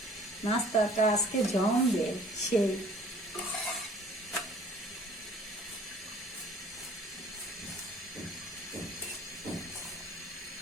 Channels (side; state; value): both; normal; correlation 0.53